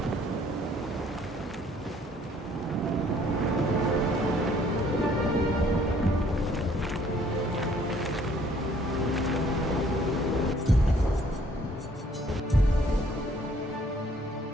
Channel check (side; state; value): both; normal; correlation 0.61